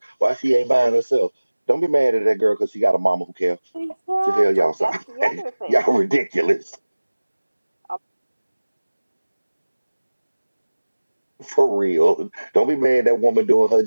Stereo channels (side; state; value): both; inverted; correlation -1.00